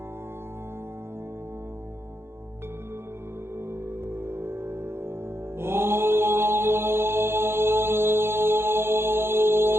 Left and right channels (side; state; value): left; late; 0.12 ms